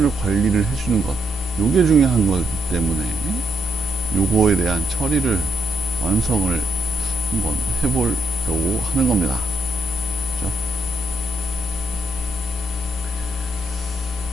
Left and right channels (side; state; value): both; normal; correlation 0.78